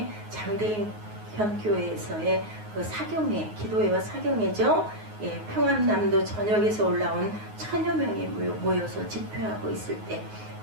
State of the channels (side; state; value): left; late; 9.5 ms